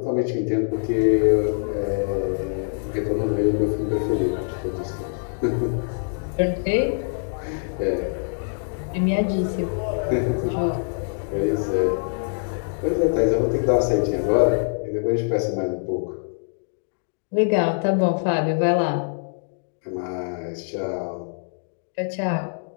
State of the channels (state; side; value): silent; right; digital silence